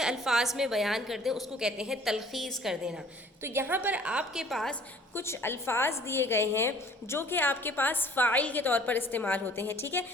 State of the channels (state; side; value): normal; both; correlation 0.53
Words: الفاظ میں بیان کر دیں، اس کو کہتے ہیں تلخیص کر دینا۔ تو یہاں پر آپ کے پاس کچھ الفاظ دیے گئے ہیں جو کہ آپ کے پاس فاعل کے طور پر استعمال ہوتے ہیں۔ ٹھیک ہے،